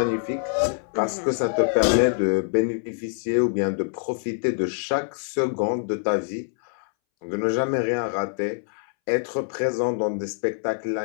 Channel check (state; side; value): silent; right; 62 dB below the other